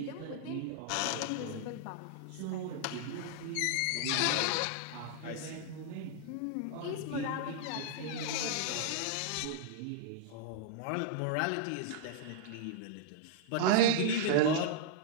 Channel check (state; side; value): different; both; correlation -0.01